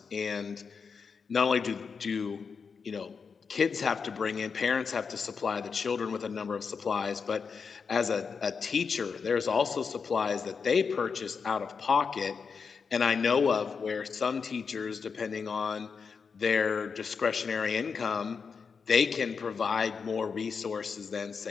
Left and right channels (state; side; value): quieter; right; 5.6 dB